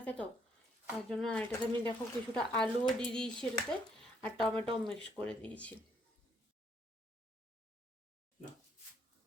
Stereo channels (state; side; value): normal; both; correlation 0.69